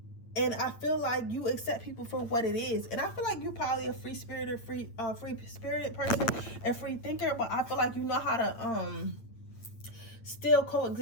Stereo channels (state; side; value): late; right; 8.8 ms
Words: And I feel like you accept people for what it is. And I feel like you're probably a free spirited person and free thinker, but I feel like you know how to still